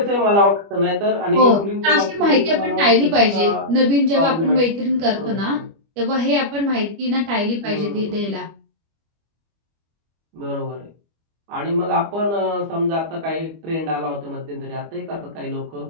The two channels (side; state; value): left; late; 25 ms